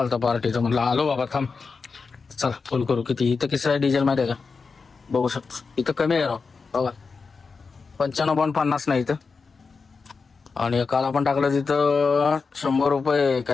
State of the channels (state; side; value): quieter; right; 4.8 dB